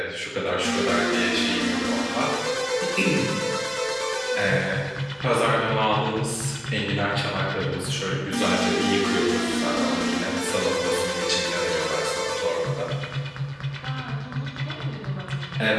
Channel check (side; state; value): both; identical; correlation 1.00